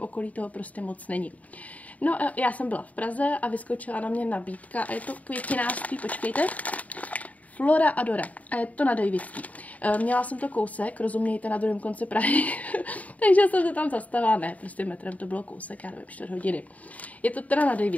toho prostě moc není. No já jsem byla v Praze a vyskočila na mě nabídka a je to květinářství, počkejte, Flora Adora a je to na Davidský. Měla jsem to kousek, rozumějte, na druhém konci Prahy, takže jsem se tam zastavila, ne, prostě metrem to bylo kousek, já nevím, 4 hodiny. Je to teda na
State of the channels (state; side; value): late; right; 0.071 ms